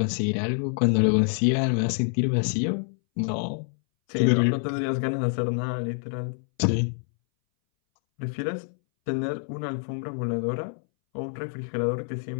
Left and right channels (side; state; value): right; silent; 61 dB below the other